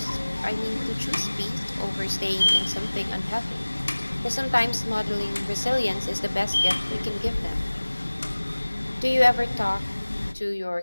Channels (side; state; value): both; inverted; correlation -1.00